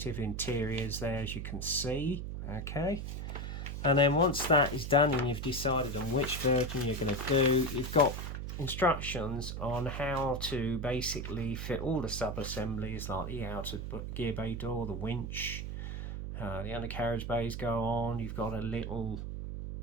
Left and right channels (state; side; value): noise; right; hum, 5 dB below the sound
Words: interiors there, as you can see. Okay. And then once that is done and you've decided on which version you're going to do, you've got instructions on how to basically fit all the sub-assemblies, like the outer gear bay door, the winch, the undercarriage bays go on. You've got a little